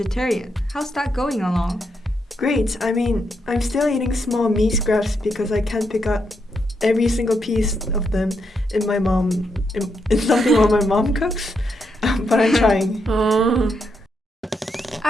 How's that going along? Great. I'm still eating small meat scraps because I can't pick up every single piece of them in something what my mom cooks. But I'm trying.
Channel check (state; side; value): normal; both; correlation 0.80